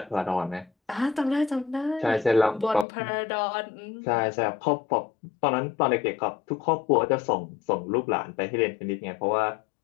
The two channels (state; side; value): drops out; right; at 2.9 s